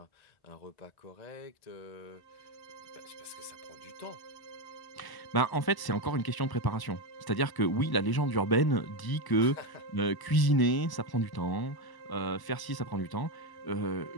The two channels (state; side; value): late; right; 1.0 ms